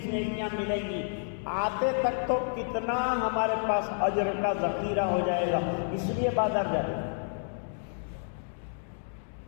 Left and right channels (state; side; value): silent; right; digital silence